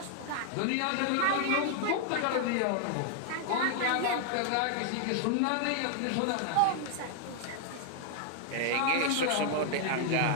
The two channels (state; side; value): different; both; correlation 0.00